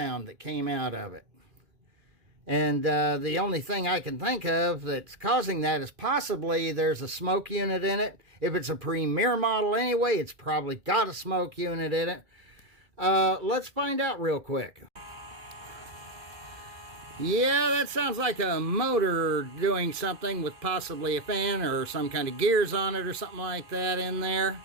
that came out of it. And the only thing I can think of that's causing that is possibly there's a smoke unit in it. If it's a Premier model anyway, it's probably got a smoke unit in it. Let's find out real quick. Yeah, that sounds like a motor doing something with possibly a fan or some kind of gears on it or something like that in there.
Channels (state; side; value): late; left; 2.6 ms